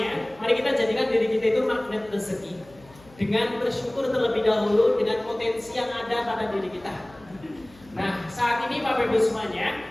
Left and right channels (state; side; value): noise; left; hum, 25 dB below the sound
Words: mari kita jadikan diri kita itu magnet rezeki dengan bersyukur terlebih dahulu dengan potensi yang ada pada diri kita. Nah, saat ini Bapak Ibu